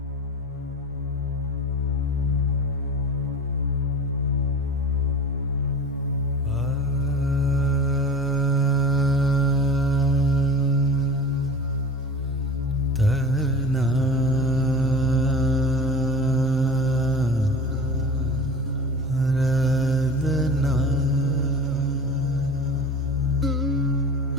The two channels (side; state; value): both; normal; correlation 0.34